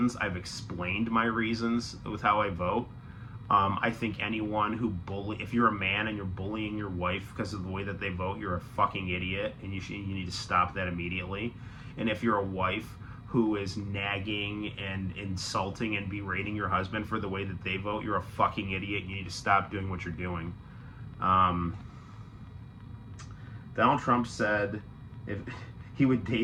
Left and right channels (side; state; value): both; identical; correlation 1.00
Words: I've explained my reasons with how I vote. I think anyone who if you're a man and you're bullying your wife because of the way that they vote, you're a fucking idiot, and you need to stop that immediately. And if you're a wife who is nagging and insulting and berating your husband for the way that they vote, you're a fucking idiot. You need to stop doing what you're doing. Donald Trump said if he would